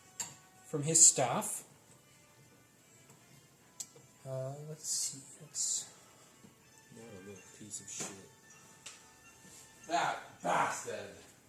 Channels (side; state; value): both; identical; correlation 1.00